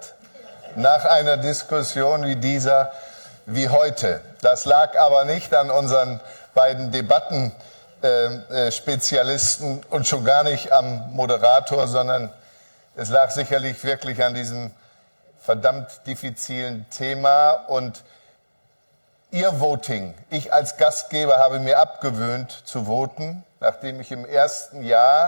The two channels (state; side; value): inverted; both; correlation -1.00